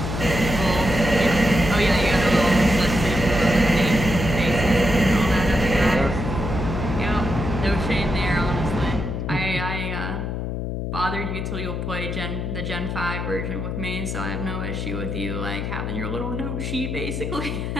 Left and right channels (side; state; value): left; noise; hum, 3 dB below the sound